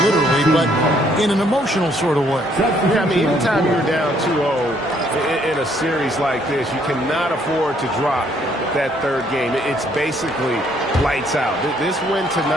literally, but in an emotional sort of way. Yeah, I mean, anytime you're down 2-0 in a series like this, you cannot afford to drop that third game. It's basically lights out. This win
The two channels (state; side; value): normal; both; correlation 0.67